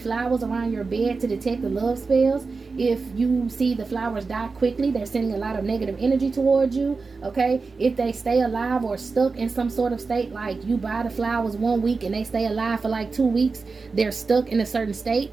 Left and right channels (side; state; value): left; quieter; 4.3 dB